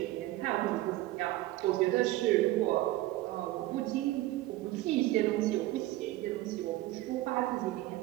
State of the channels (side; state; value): left; quieter; 16.8 dB